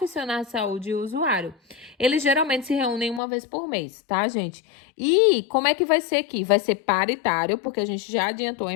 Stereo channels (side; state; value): right; drops out; at 3.2 s